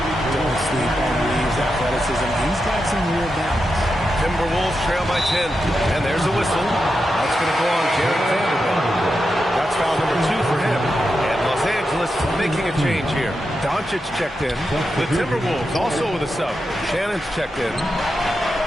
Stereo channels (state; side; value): normal; both; correlation 0.88